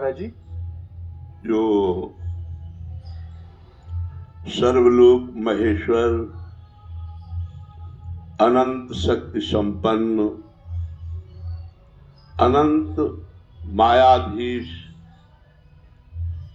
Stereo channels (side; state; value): both; identical; correlation 1.00